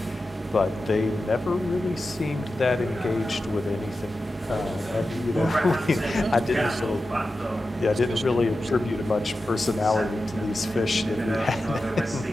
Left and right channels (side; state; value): both; normal; correlation 0.92